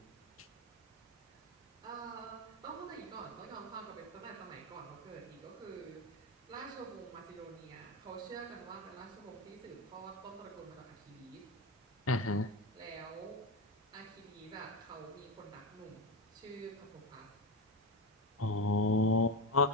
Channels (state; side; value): normal; both; correlation 0.16